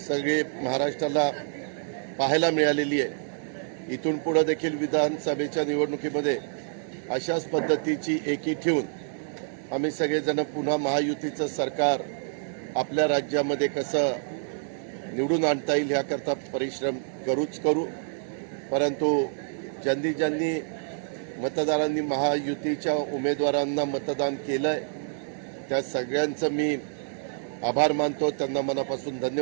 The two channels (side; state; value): left; silent; digital silence